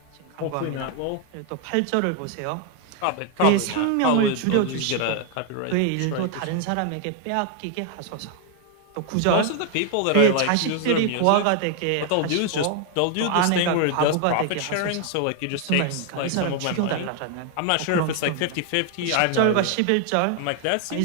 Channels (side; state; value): both; different; correlation 0.00